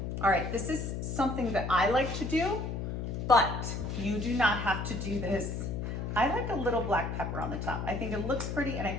All right, this is something that I like to do, but you do not have to do this. I like a little black pepper on the top. I think it looks pretty and I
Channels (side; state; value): left; noise; hum, 4 dB below the sound